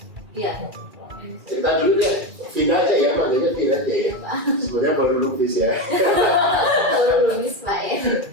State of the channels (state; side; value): late; left; 2.3 ms